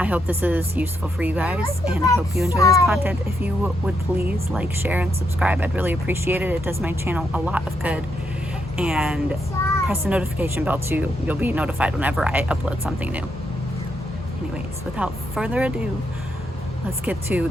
hope this is useful for you guys, and I hope you enjoy this content. If you would please like, share, and subscribe, I'd really appreciate it. It does my channel a lot of good. And press the notification bell too. You'll be notified whenever I upload something new. Anyways, without further ado, let's get to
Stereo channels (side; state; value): both; normal; correlation 0.79